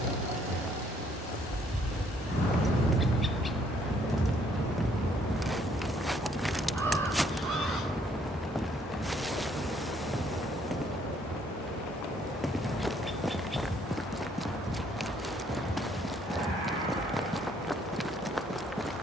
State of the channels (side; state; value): both; normal; correlation 0.66